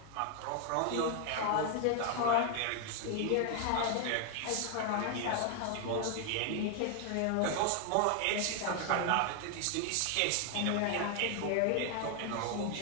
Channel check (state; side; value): different; both; correlation 0.00